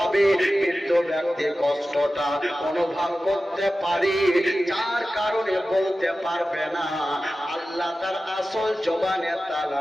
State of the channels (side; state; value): both; normal; correlation 0.95